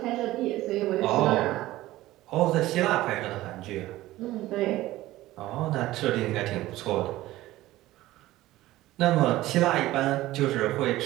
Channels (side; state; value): left; quieter; 16.5 dB